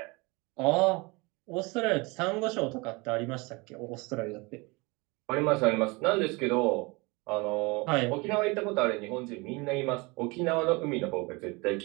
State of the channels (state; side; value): quieter; left; 26.2 dB